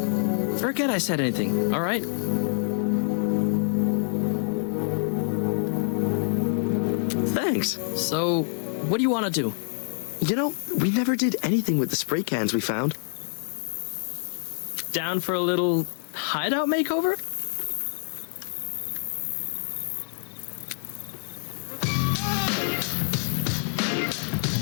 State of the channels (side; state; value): right; silent; digital silence